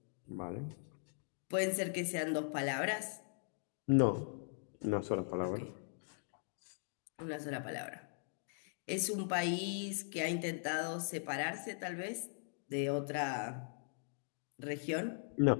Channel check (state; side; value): silent; right; digital silence